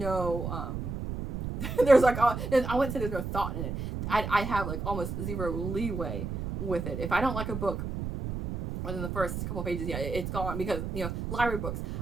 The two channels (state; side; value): noise; right; rumble, 5 dB below the sound